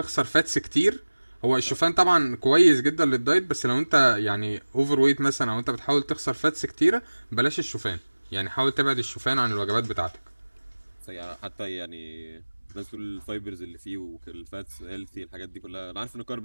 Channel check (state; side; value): inverted; both; correlation -1.00